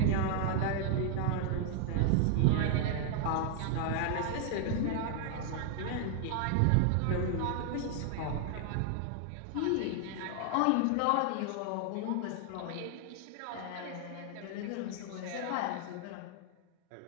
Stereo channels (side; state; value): both; different; correlation 0.00